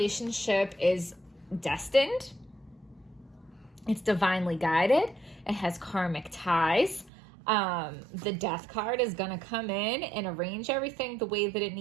is destined. It's divinely guided. It has karmic ties. The Death card is going to come in and arrange everything the way that it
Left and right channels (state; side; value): drops out; left; at 7.1 s